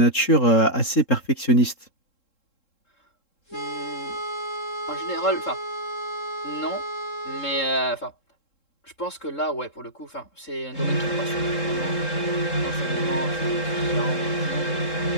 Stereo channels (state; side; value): late; right; 3.7 ms